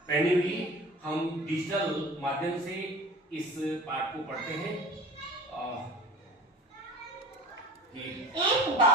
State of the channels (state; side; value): normal; both; correlation 0.40